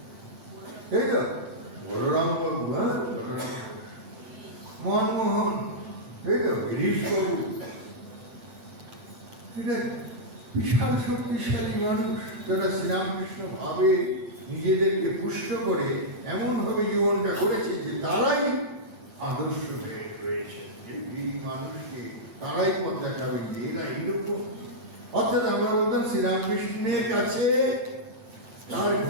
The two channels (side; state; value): left; late; 9.0 ms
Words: তাই তো? বলরাম বাবু, মনমোহন, তাই তো? গিরিশ বাবু, বিশাল শক্তিশালী মানুষ, যারা শ্রীরামকৃষ্ণ ভাবে নিজেদেরকে পুষ্ট করে এমন ভাবে জীবনটা করেছে যে তারাই আদর্শ হয়ে রয়েছে। এই মানুষকে তারাই পথ দেখাবে যে এরা এইরকম। অর্থাৎ আমরা বলতাম শ্রীরামকৃষ্ণের কাছে, তার